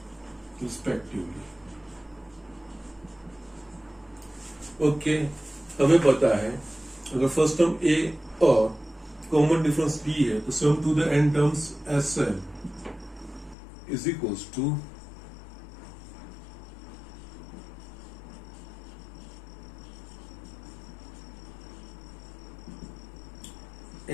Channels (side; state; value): right; drops out; at 13.6 s